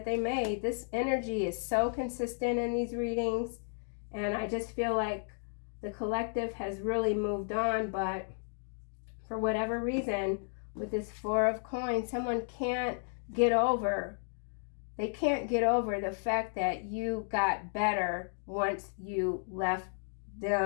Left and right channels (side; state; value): right; silent; digital silence